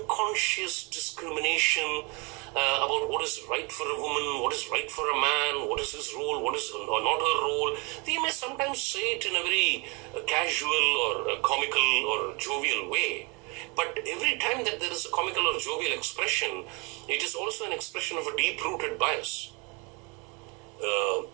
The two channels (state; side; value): quieter; left; 30.4 dB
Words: discrimination about what is right for a woman, what is right for a man, what is his role, what is not her role. They may sometimes say it in a very casual or comical or jovial way. But every time that there is a comical or jovial expression, it is also an expression of a deep-rooted bias.